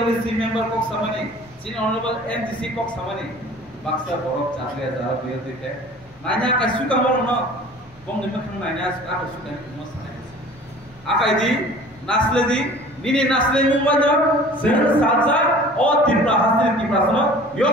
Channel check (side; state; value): both; normal; correlation 0.46